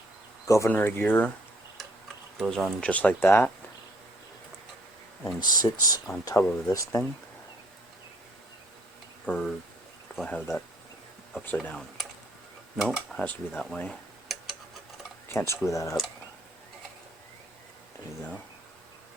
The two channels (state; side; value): normal; both; correlation 0.63